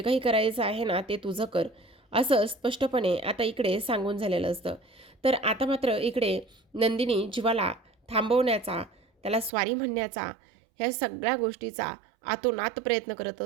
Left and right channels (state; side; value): drops out; left; at 9.5 s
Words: काही करायचं आहे ना, ते तुझं कर. असं स्पष्टपणे आता इकडे सांगून झालेलं असतं. तर आता मात्र इकडे नंदिनी जीवाला थांबवण्याचा, त्याला स्वारी म्हणण्याचा, ह्या सगळ्या गोष्टीचा आतोनात प्रयत्न करत